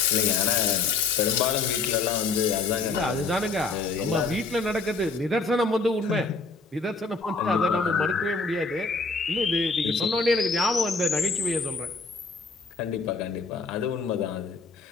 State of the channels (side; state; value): right; quieter; 4.0 dB